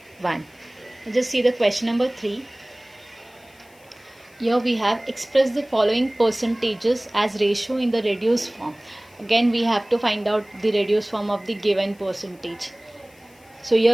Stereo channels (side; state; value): left; noise; hiss, 29 dB below the sound